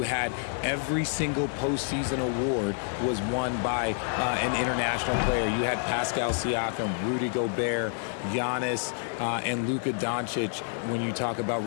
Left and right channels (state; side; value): silent; right; 59 dB below the other